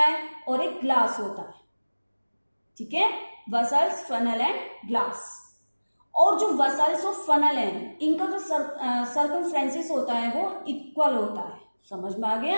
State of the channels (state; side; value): inverted; both; correlation -1.00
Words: और एक ग्लास होता है। ठीक है, वेसल्स, फनल एंड ग्लास। और जो वेसल्स और फनल है, इनका जो सर्कमफ्रेंसेस होता है वो इक्वल होता है। समझ में आ